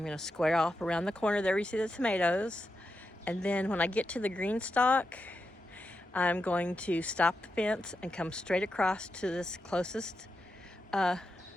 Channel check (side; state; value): both; normal; correlation 0.87